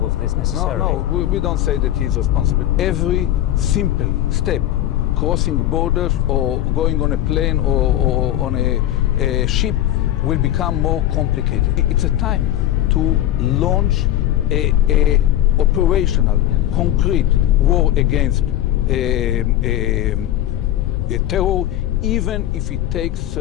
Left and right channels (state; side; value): quieter; right; 13.0 dB